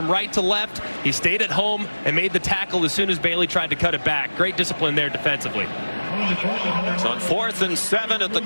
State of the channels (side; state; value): both; inverted; correlation -1.00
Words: right to left. He stayed at home and made the tackle as soon as Bailey tried to cut it back. Great discipline there defensively. It's on 4th and 7 at the